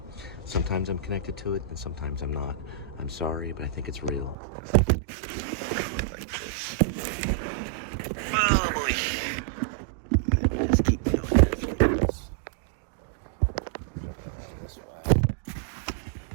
Sometimes I'm connected to it, and sometimes I'm not. I'm sorry, but I think it's real.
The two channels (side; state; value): left; drops out; at 4.4 s